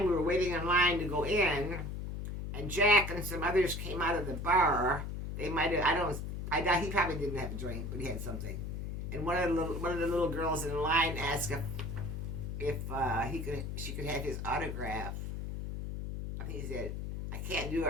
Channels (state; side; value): noise; left; hum, 5 dB below the sound